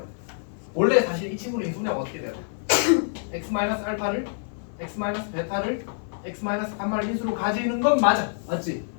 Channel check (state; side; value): silent; right; digital silence